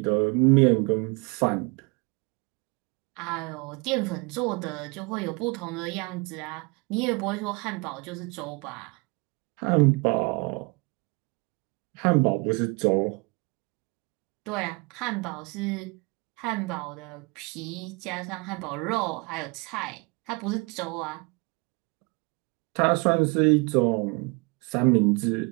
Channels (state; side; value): quieter; left; 29.0 dB